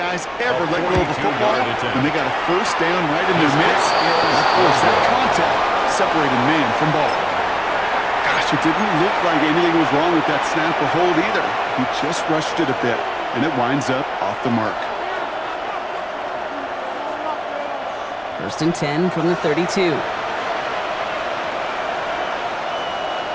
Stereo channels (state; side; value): identical; both; correlation 1.00